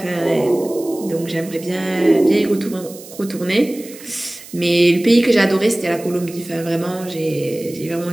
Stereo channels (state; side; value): noise; right; hiss, 18 dB below the sound